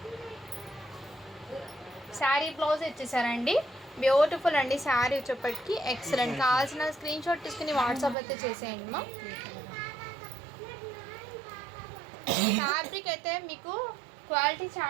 శారీ బ్లౌజ్ ఇచ్చేసారండి. బ్యూటిఫుల్ అండి శారీ వచ్చేప్పటికి ఎక్సలెంట్. కావాల్సిన స్క్రీన్ షాట్ తీసుకుని వాట్సాప్ అయితే చేసేయండి మ్యామ్. ఫ్యాబ్రిక్ అయితే మీకు క్వాలిటీ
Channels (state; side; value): drops out; left; at 8.2 s